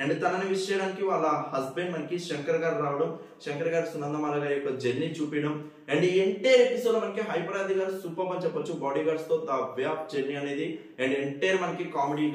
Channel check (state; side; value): identical; both; correlation 1.00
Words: అండ్ తనని విష్ చేయడానికి వాళ్ళ హస్బెండ్ మనకి శంకర్ గారు రావడం, శంకర్ గారు సునందమాల గారి యొక్క జర్నీ చూపించడం. అండ్ ఈ ఎంటైర్ ఎపిసోడ్ లో మనకి హైపరాది గారు సూపర్ అని చెప్పొచ్చు. బాడీ గార్డ్స్ తో ద వే ఆఫ్ జర్నీ అనేది అండ్ ఎంటైర్ మనకి